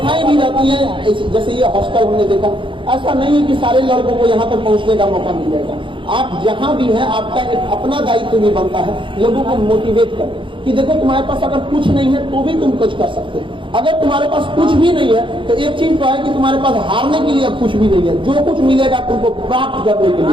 भी रहती हैं, जैसे ये हॉस्टल हमने देखा। ऐसा नहीं है कि सारे लड़कों को यहाँ तक पहुँचने का मौका मिल जाएगा। आप जहाँ भी हैं, आपका एक अपना दायित्व भी बनता है लोगों को मोटिवेट कर कि देखो तुम्हारे पास अगर कुछ नहीं है तो भी तुम कुछ कर सकते हो। अगर तुम्हारे पास कुछ भी नहीं है तो एक चीज तो है कि तुम्हारे पास हारने के लिए कुछ भी नहीं है। जो कुछ मिलेगा तुमको प्राप्त करने के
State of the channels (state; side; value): late; left; 0.24 ms